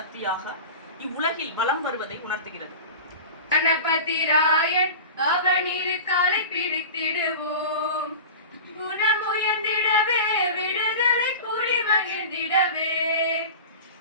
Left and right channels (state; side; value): inverted; both; correlation -0.33